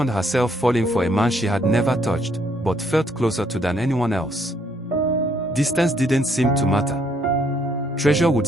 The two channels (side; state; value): both; normal; correlation 0.69